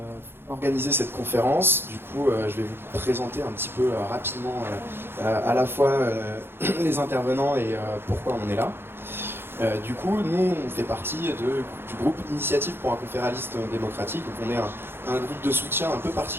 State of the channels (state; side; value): late; left; 0.11 ms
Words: organiser cette conférence. Du coup, je vais vous présenter un petit peu rapidement à la fois les intervenants et pourquoi on est là. Du coup, nous, on fait partie du groupe Initiative pour un conféraliste démocratique. Donc on est un groupe de soutien un peu